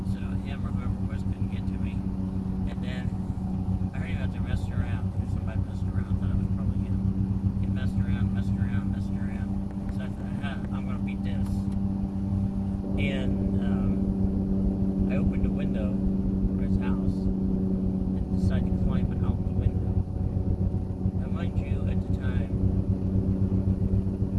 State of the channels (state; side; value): identical; both; correlation 1.00